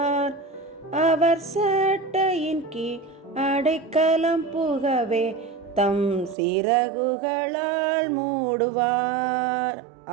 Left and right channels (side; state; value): left; drops out; at 6.4 s